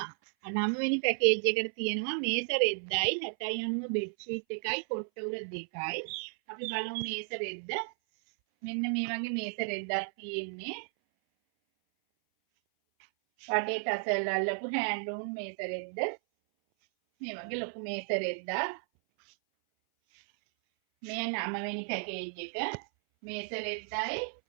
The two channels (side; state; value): left; silent; 55 dB below the other